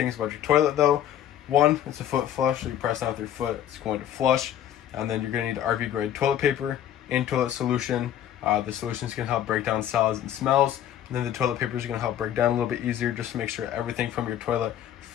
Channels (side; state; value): right; quieter; 10.9 dB